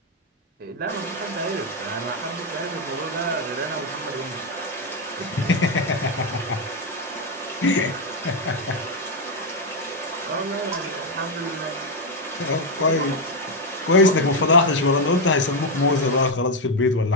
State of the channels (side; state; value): both; normal; correlation 0.05